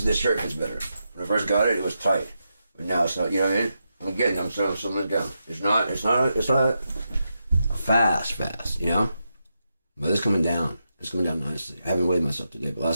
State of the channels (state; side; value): inverted; both; correlation -0.86